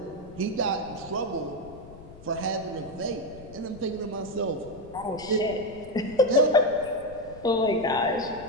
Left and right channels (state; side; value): noise; left; rumble, 18 dB below the sound